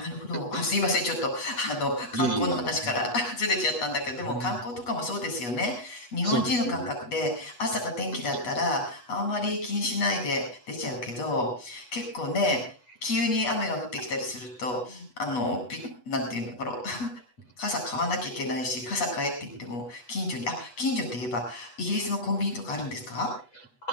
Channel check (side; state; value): right; late; 8.2 ms